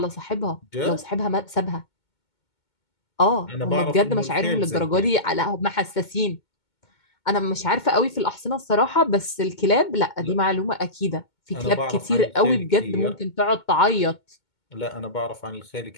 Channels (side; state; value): right; late; 2.2 ms